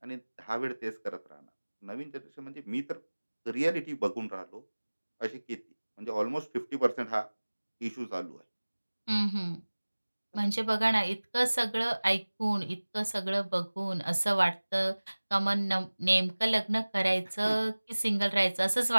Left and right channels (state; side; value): inverted; both; correlation -1.00